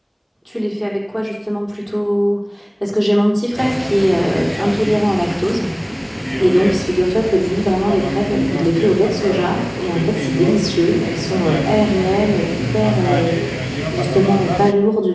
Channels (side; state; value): both; identical; correlation 1.00